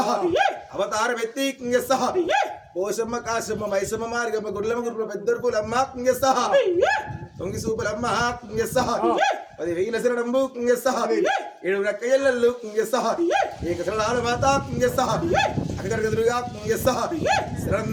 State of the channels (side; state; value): both; identical; correlation 1.00